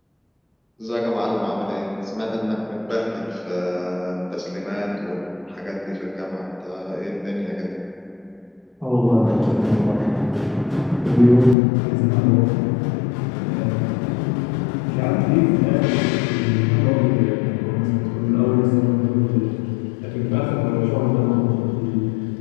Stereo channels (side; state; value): right; drops out; at 11.6 s